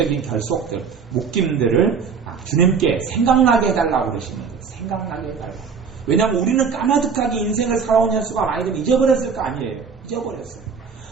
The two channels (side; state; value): left; quieter; 5.9 dB